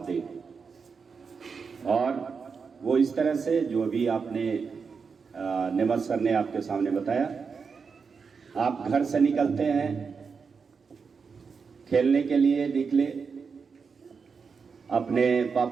دے، اور وہ اس طرح سے جو بھی آپ نے نعمت سر نے آپ کے سامنے بتایا، آپ گھر سے نکلتے ہیں، کھیلنے کے لیے نکلے، اپنے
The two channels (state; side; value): quieter; left; 5.5 dB